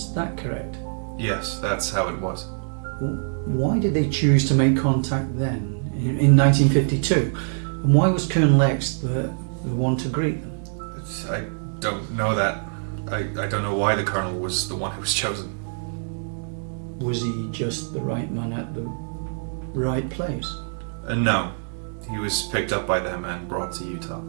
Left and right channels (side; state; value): left; silent; digital silence